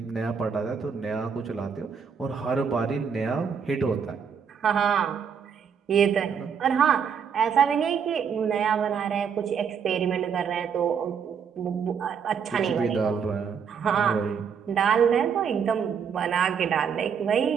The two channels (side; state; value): left; quieter; 6.9 dB